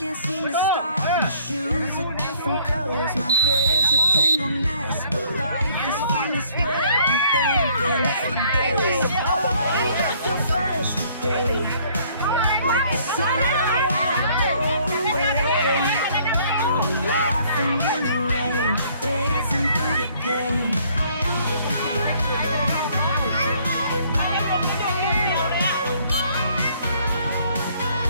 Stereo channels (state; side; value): inverted; both; correlation -0.61